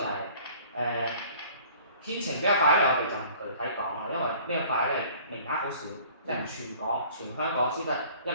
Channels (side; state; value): both; inverted; correlation -0.51